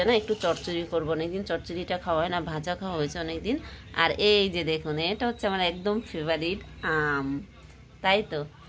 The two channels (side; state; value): both; identical; correlation 1.00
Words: না একটু চচ্চড়ি করবো, অনেকদিন চচ্চড়িটা খাওয়া হয় না, ভাজা খাওয়া হয়েছে অনেকদিন। আর এই যে দেখুন এটা হচ্ছে আমার একদম ফেভারিট আম, তাই তো